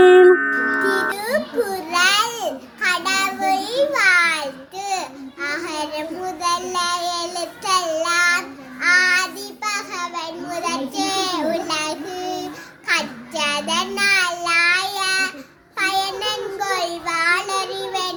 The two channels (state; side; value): identical; both; correlation 1.00